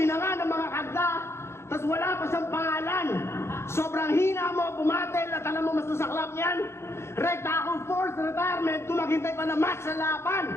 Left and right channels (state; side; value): late; right; 0.13 ms